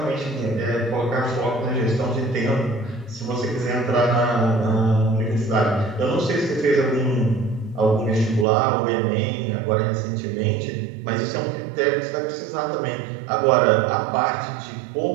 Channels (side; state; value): left; drops out; at 8.5 s